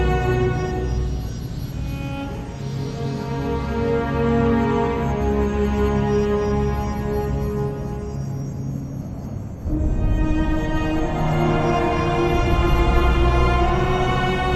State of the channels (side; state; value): both; identical; correlation 1.00